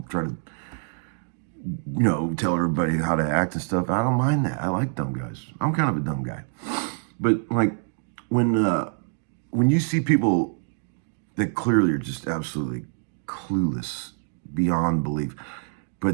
try to tell everybody how to act and stuff. I don't mind that. I like dumb guys. I'm kind of a dumb guy. But like when you see people that clearly are just absolutely clueless beyond belief,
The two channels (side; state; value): left; silent; 61 dB below the other